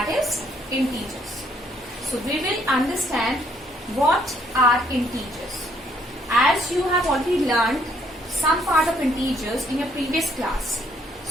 is integers. So we will understand what are integers. As you have already learned some part of integers in your previous class.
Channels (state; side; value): normal; both; correlation 0.68